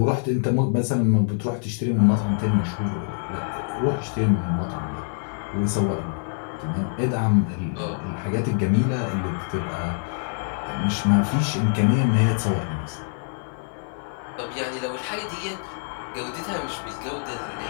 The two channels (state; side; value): silent; right; digital silence